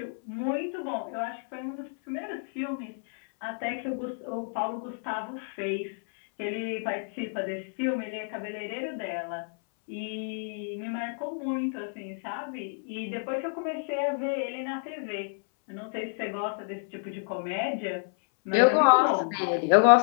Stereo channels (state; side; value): silent; right; 58 dB below the other